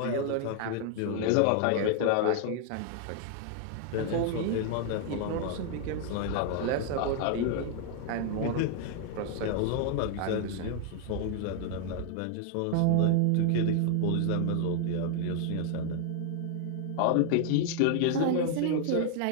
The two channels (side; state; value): both; different; correlation 0.00